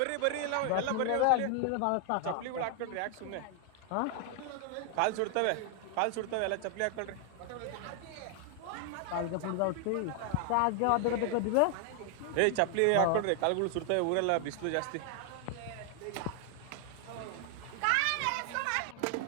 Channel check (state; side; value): different; both; correlation 0.00